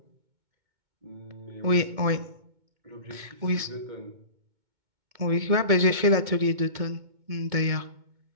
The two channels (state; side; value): late; left; 2.2 ms